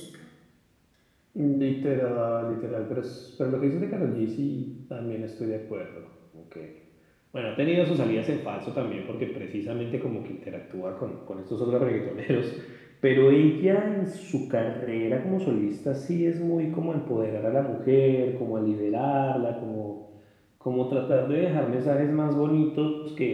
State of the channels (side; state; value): both; identical; correlation 1.00